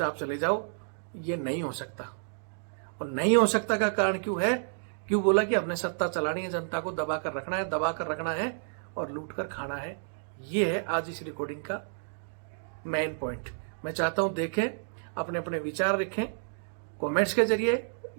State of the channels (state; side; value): silent; left; digital silence